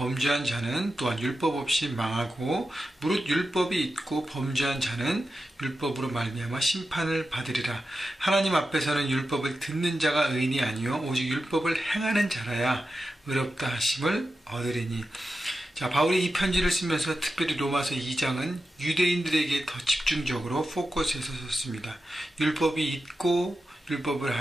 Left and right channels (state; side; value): normal; both; correlation 0.91